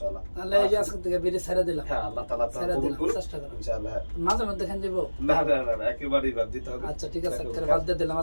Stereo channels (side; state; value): both; inverted; correlation -1.00